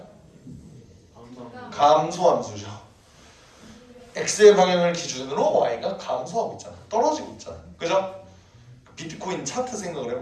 감소함수죠. x의 방향을 기준으로 y가 감소하고 있잖아. 떨어지고 있잖아. 그죠? 비트코인 차트 생각을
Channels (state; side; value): identical; both; correlation 1.00